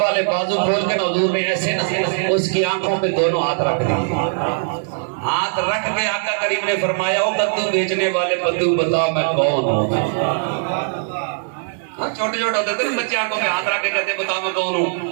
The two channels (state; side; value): silent; left; digital silence